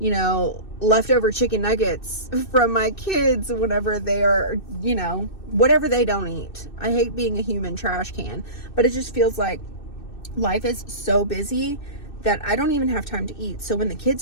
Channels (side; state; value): right; late; 2.6 ms